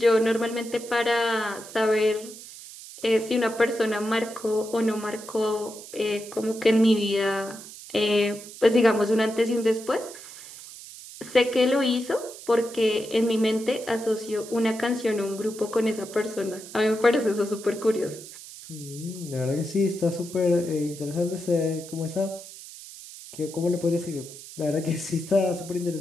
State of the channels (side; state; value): right; noise; hiss, 15 dB below the sound